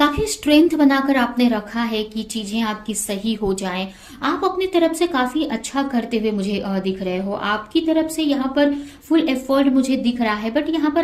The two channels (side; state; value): both; identical; correlation 1.00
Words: स्ट्रेंथ बनाकर आपने रखा है कि चीजें आपकी सही हो जाएं। आप अपनी तरफ से काफी अच्छा करते हुए मुझे दिख रहे हो। आपकी तरफ से यहाँ पर फुल एफर्ट मुझे दिख रहा है, बट यहाँ पर